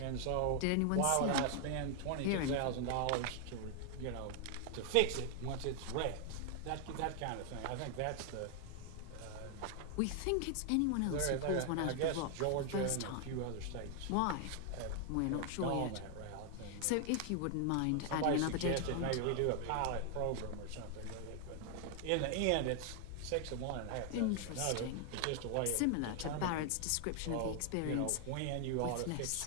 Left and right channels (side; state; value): both; different; correlation 0.00